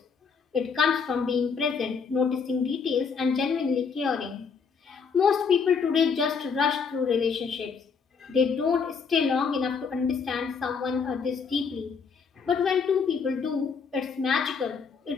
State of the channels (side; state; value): right; quieter; 5.7 dB